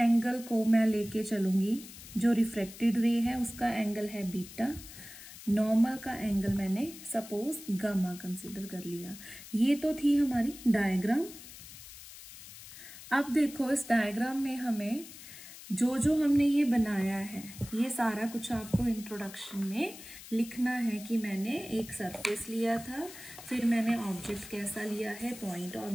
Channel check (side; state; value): left; noise; hiss, 15 dB below the sound